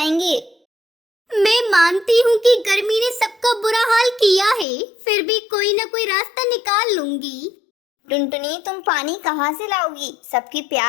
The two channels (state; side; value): drops out; right; at 4.7 s